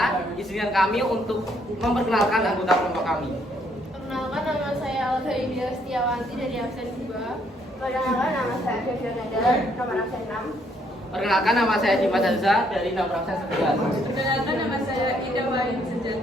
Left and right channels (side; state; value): both; normal; correlation 0.69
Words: izinkan kami untuk memperkenalkan anggota kelompok kami. Perkenalkan, nama saya Alda India Setiawanti dari absen 2. Perkenalkan, nama saya Devia Nadal, nomor absen 6. Perkenalkan, nama saya Dimas Azza dari nomor absen 11. Perkenalkan, nama saya Ida Wahid